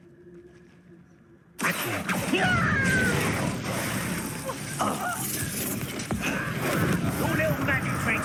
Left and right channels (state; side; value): identical; both; correlation 1.00